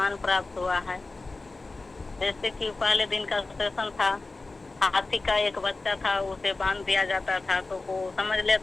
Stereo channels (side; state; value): right; quieter; 3.4 dB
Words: प्राप्त हुआ है। जैसे कि पहले दिन का सेशन था, हाथी का एक बच्चा था, उसे बांध दिया जाता था तो वो समझ